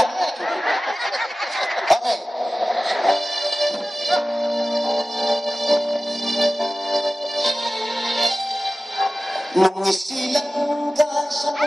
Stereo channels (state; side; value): normal; both; correlation 0.97